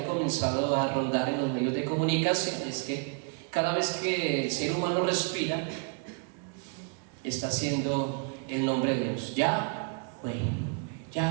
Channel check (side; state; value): left; quieter; 38.6 dB